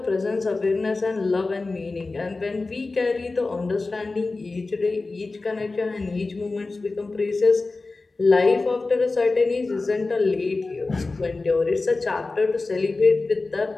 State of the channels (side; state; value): right; quieter; 3.5 dB